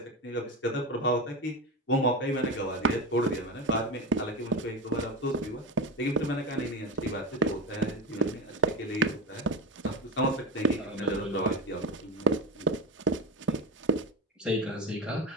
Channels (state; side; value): normal; both; correlation 0.20